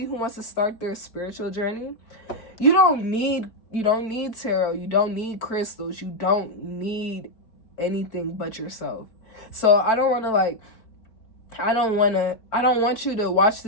who wants to start their spiritual journey, you don't need tarot. You don't need crystals. You don't need anything but yourself. So I don't want you to watch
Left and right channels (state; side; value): late; right; 4.5 ms